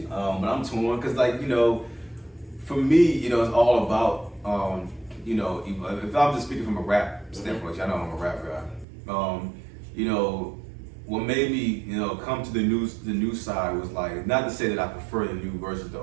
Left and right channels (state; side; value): drops out; left; at 8.8 s